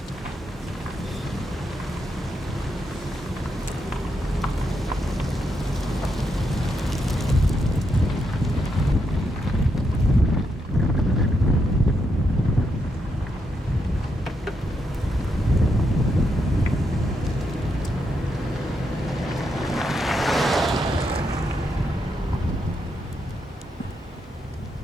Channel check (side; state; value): both; normal; correlation 0.81